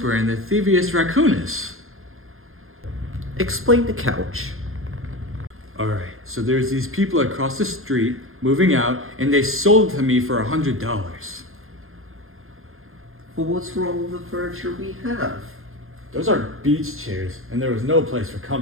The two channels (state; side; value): late; left; 0.61 ms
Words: and the Thievius Raccoonus. Explain the couch. Alright, so there's these people across the street moving out, and they sold it to me for $100. Well, what's wrong with the furniture we have? Those are beach chairs, and there was no place for